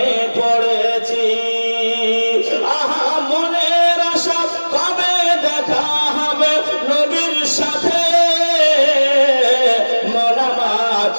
পড়েছি। আহা মনের আশা কবে দেখা হবে নবীর সাথে, মন আমার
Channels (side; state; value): both; inverted; correlation -1.00